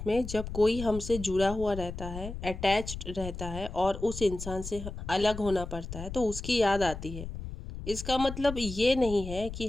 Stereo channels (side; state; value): left; noise; rumble, 9 dB below the sound